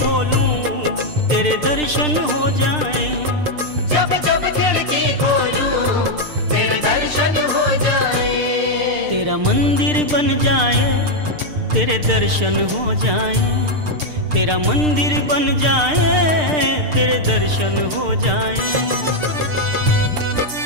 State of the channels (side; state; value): left; late; 6.6 ms